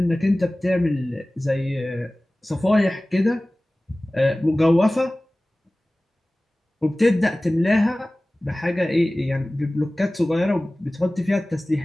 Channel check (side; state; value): both; normal; correlation 0.98